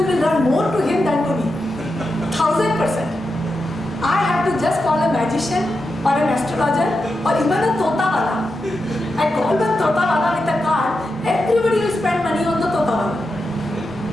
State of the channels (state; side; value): normal; both; correlation 0.88